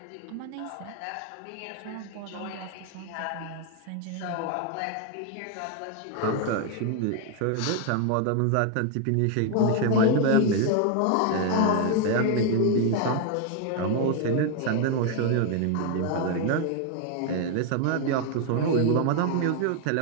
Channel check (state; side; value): different; both; correlation 0.01